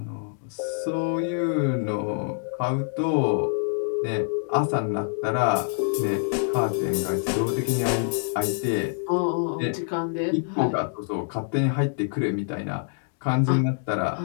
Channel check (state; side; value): silent; right; digital silence